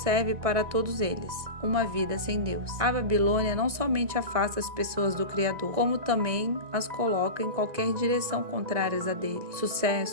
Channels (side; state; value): left; late; 1.6 ms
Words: para todos eles: uma vida sem Deus. A Babilônia não somente afasta as pessoas do Criador, como também as coloca em qualquer direção contrárias a dele.